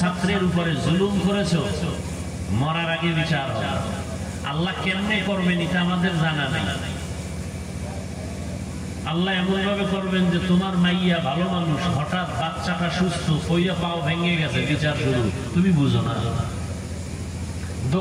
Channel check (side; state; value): both; identical; correlation 1.00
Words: উপরে জুলুম করেছো, মরার আগে বিচার হবে। আল্লাহ কেমনে করবেন এটা আমাদের জানা নেই। আল্লাহ এমন ভাবে করবেন যে তোমার মাইয়া ভালো মানুষ, হঠাৎ বাচ্চাটা সুস্থ, কইয়া পাও ভেঙে গেছে, বিচার শুরু, তুমি বুঝো না।